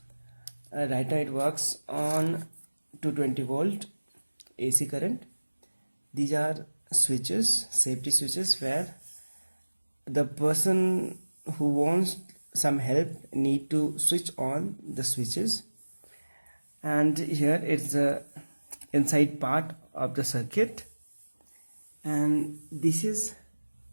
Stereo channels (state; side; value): inverted; both; correlation -1.00